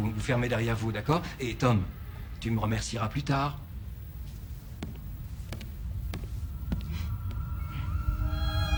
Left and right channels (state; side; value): identical; both; correlation 1.00